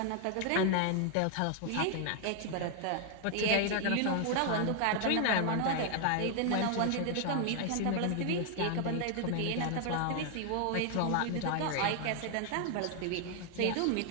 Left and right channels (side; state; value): both; different; correlation 0.00